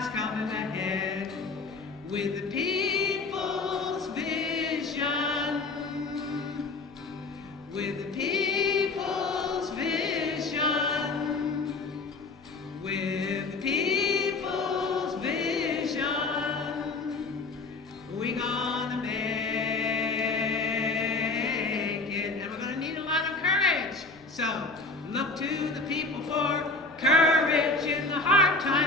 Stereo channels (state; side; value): quieter; right; 3.7 dB